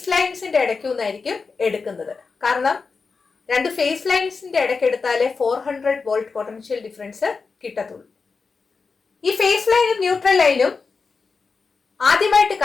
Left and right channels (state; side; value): quieter; right; 4.7 dB